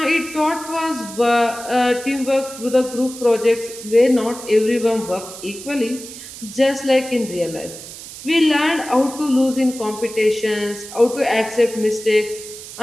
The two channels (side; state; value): right; noise; hiss, 13 dB below the sound